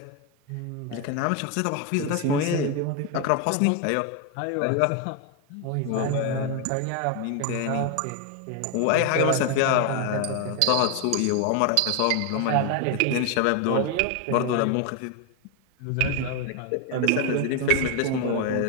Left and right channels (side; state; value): both; different; correlation 0.01